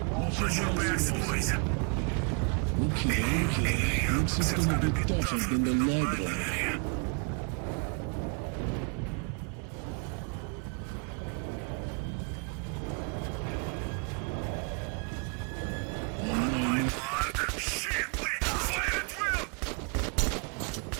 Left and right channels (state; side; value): quieter; left; 37.6 dB